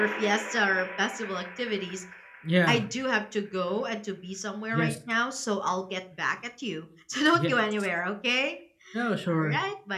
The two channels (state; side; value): identical; both; correlation 1.00